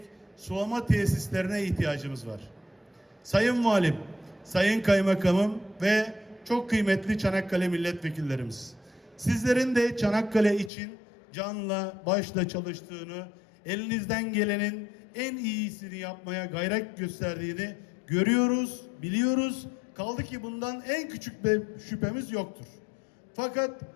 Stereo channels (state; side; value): drops out; right; at 10.7 s